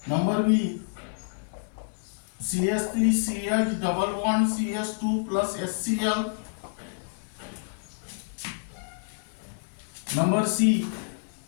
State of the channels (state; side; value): silent; right; digital silence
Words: Number B, CH3 CH double bond CH2 plus HCl. Number C,